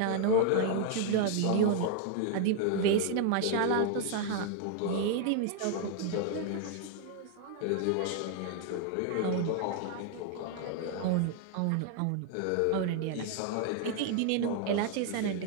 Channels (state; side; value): different; both; correlation 0.00